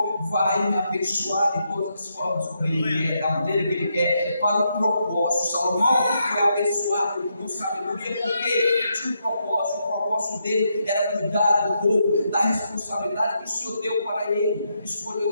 vai me abençoar de todas as formas, como Ele quer, da maneira que Ele quer, para o propósito. Salomão foi abençoado com sabedoria, porque tinha um propósito. O propósito dele era cuidar do povo, da responsabilidade que o Senhor deu para ele,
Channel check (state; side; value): inverted; both; correlation -0.80